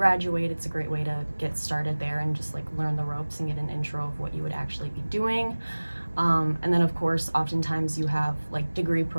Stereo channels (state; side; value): inverted; both; correlation -1.00